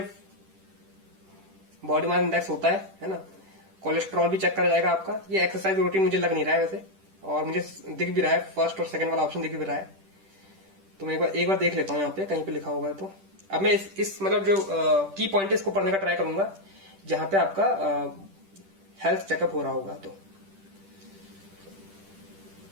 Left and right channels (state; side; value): late; left; 10 ms